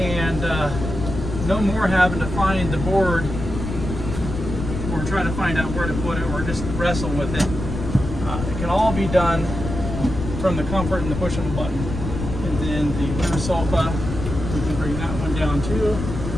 no more having to find the board or try to find out where to put it or just wrestle with it. It can all be done from the comfort and the push of a button. And then the winter sofa, we can bring that one down too.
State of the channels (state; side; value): noise; left; rumble, 6 dB below the sound